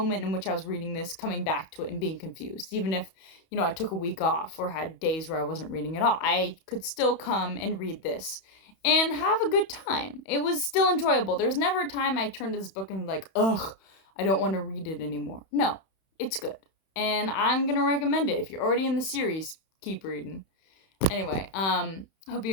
in which I was reading this, coming back to it and being confused. Even if, I took a week off or had days where I wasn't reading at all, I could still come and read this and have a good time. It was still enjoyable. There's never a time I turned to this book and like, ugh, I don't want to read it anymore. No, it's good. And I'm going to recommend it. If you're already in the series, keep reading. Anyway, hope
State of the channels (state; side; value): late; right; 31 ms